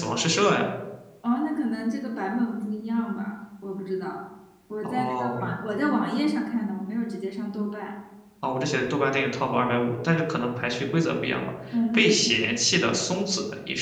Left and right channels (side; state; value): both; identical; correlation 1.00